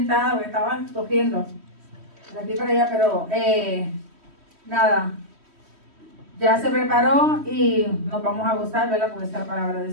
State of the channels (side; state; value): left; late; 3.1 ms